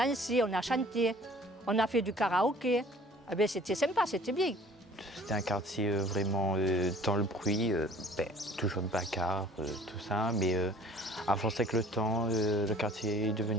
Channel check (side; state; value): both; normal; correlation 0.51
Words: on a chanté, on a fait du karaoké. Eh bien, c'était sympa, c'était bien. C'était un quartier vraiment dans le bruit, toujours de bagarre, tout ça, mais à force avec le temps, le quartier est